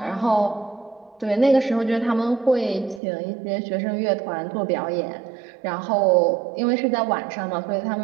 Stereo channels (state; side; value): drops out; left; at 3.0 s